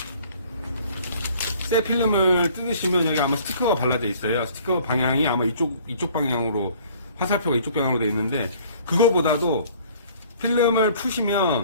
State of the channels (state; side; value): inverted; both; correlation -0.54